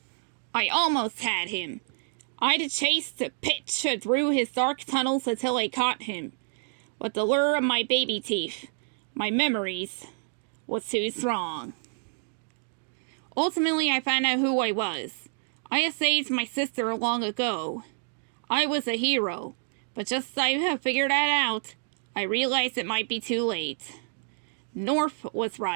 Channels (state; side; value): silent; left; 59 dB below the other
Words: I almost had him. I'd chased Pitch through his dark tunnels until I caught him. But the lure of my baby teeth, my memories, was too strong. Ultimately, I found out who I was. I had saved my sister long ago. I was a hero, but just as I have figured that out, I realized it might be too late. North was